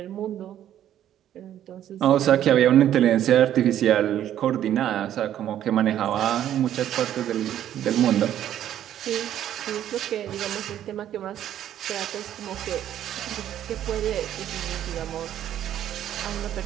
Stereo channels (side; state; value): left; quieter; 11.2 dB